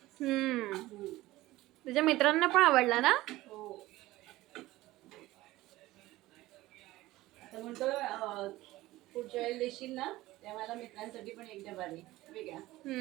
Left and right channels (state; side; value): quieter; left; 17.5 dB